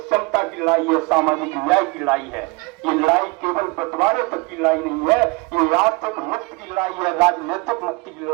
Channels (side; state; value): left; quieter; 26.6 dB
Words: की लड़ाई है, सामाजिक न्याय की लड़ाई है। ये लड़ाई केवल बंटवारे तक की लड़ाई नहीं है, ये आर्थिक मुक्ति की लड़ाई है, राजनीतिक मुक्ति की